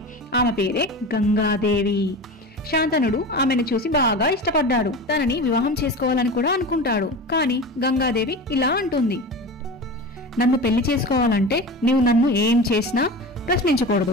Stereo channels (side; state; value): both; normal; correlation 0.30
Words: ఆమె పేరే గంగాదేవి. శాంతనుడు ఆమెను చూసి బాగా ఇష్టపడ్డాడు. తనని వివాహం చేసుకోవాలని కూడా అనుకుంటాడు. కానీ గంగాదేవి ఇలా అంటుంది, నన్ను పెళ్లి చేసుకోవాలంటే నీవు నన్ను ఏం చేసినా